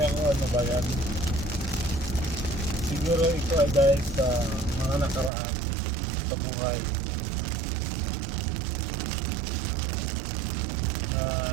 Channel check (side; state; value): left; drops out; at 5.3 s